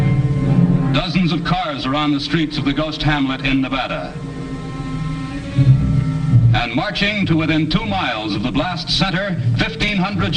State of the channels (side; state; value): both; identical; correlation 1.00